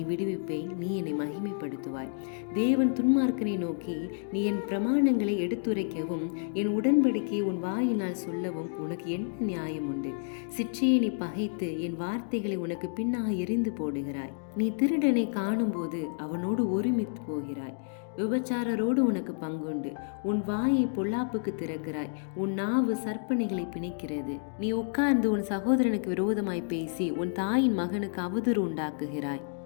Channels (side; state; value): right; silent; digital silence